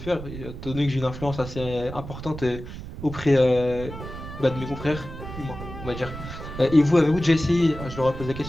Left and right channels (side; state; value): right; noise; rumble, 11 dB below the sound